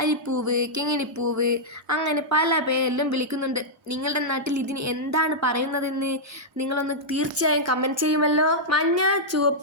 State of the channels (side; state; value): both; normal; correlation -0.08